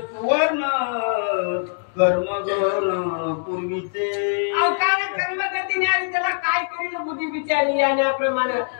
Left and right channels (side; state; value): right; silent; digital silence